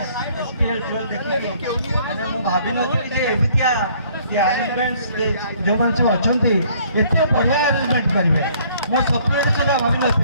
एसपीएल 12 देखिए, मैंने मु भाभी नथी जे एबितिया ये अरेंजमेंट्स जो माने सब अछंती एते बढ़िया अरेंजमेंट करिवे, मो सपने सुधा भाभी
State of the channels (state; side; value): inverted; both; correlation -0.60